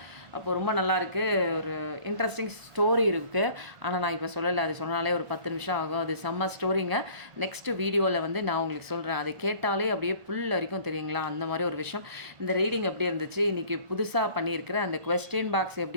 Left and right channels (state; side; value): late; left; 1.4 ms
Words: அப்போ ரொம்ப நல்லாயிருக்கு. ஒரு இன்ட்ரெஸ்டிங் ஸ்டோரி இருக்குது. ஆனால் நான் இப்போ சொல்லலை, அது சொன்னாலே ஒரு 10 நிமிஷம் ஆகும். அது செம்ம ஸ்டோரிங்க. நெக்ஸ்ட் வீடியோவில் வந்து நான் உங்களுக்கு சொல்கிறேன். அதை கேட்டாலே அப்படியே புல் வரைக்கும் தெரியுங்களா, அந்த மாதிரி ஒரு விஷயம். இந்த ரீடிங் எப்படி இருந்துச்சு, இன்றைக்கி புதுசாக பண்ணியிருக்கிற அந்த கொஸ்டின் பாக்ஸ்